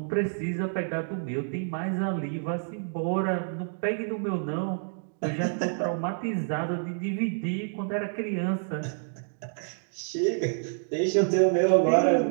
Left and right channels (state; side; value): silent; left; digital silence